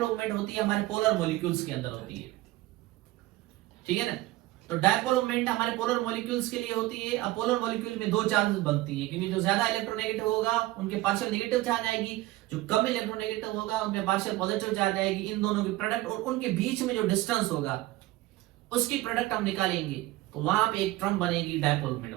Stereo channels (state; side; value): quieter; left; 17.7 dB